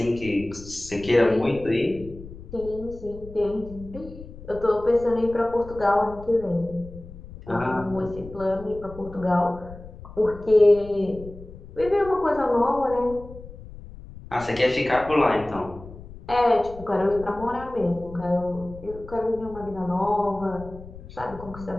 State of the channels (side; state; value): left; noise; rumble, 16 dB below the sound